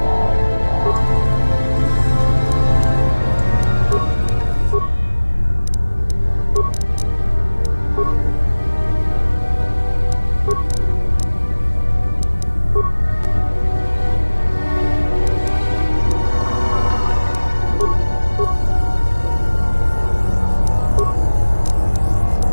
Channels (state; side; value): inverted; both; correlation -1.00